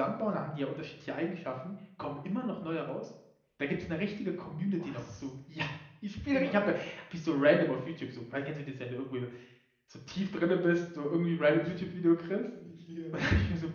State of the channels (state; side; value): identical; both; correlation 1.00